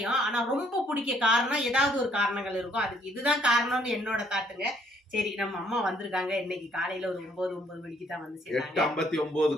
ஆனா ரொம்ப பிடிக்க காரணம் ஏதாவது ஒரு காரணங்கள் இருக்கும். அதுக்கு இதுதான் காரணம்னு என்னோட தாட்டுங்க. சரி, நம்ம அம்மா வந்திருக்காங்க. இன்னைக்கு காலையில ஒரு 9 மணிக்கு தான் வந்து சேர்ந்தாங்க.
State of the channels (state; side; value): normal; both; correlation 0.66